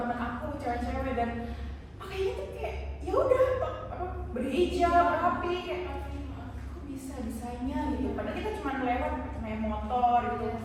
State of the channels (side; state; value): both; identical; correlation 1.00